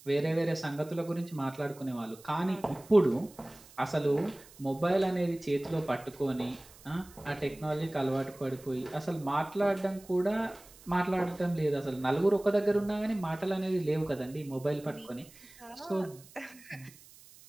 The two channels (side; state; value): right; noise; hiss, 22 dB below the sound